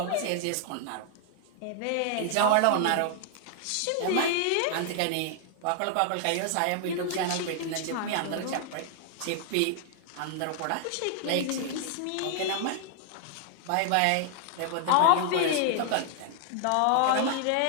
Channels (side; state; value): both; different; correlation 0.00